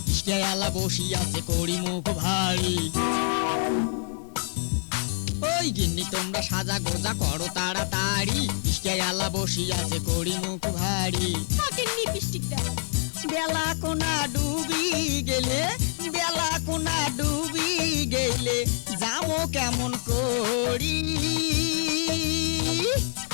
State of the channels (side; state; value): right; silent; digital silence